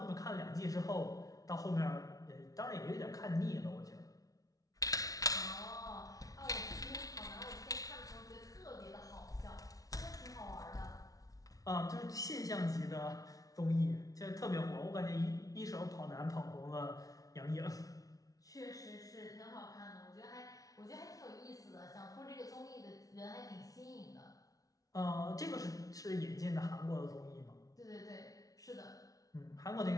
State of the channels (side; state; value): right; late; 0.18 ms